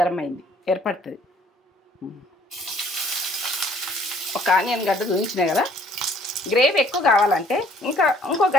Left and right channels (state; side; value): normal; both; correlation 0.59